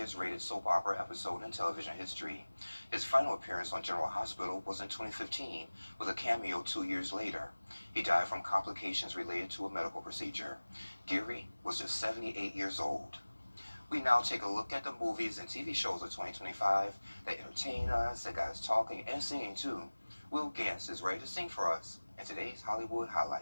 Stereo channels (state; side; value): inverted; both; correlation -1.00